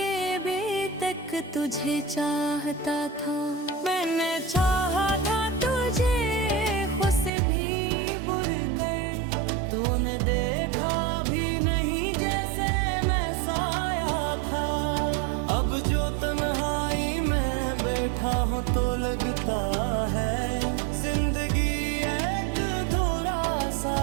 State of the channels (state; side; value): drops out; left; at 7.3 s